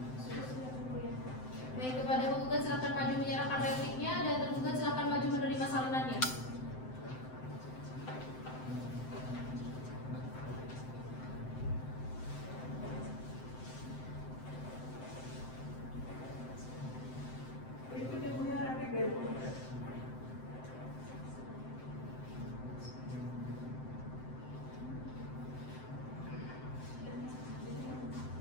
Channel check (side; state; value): right; late; 7.8 ms